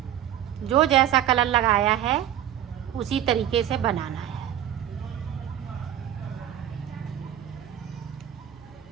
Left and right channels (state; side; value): quieter; left; 11.1 dB